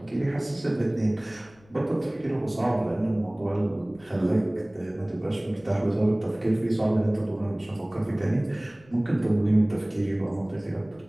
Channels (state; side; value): noise; left; rumble, 28 dB below the sound